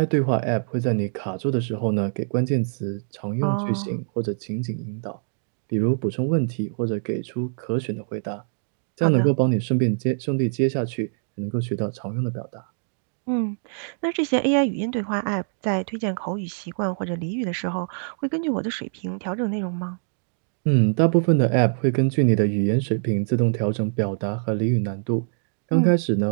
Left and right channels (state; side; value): silent; left; digital silence